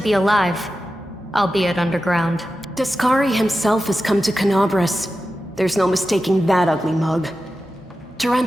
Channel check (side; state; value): both; normal; correlation 0.92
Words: alive, albeit underground. Discari himself has come to Canabras. There's no mistaking that ugly mug.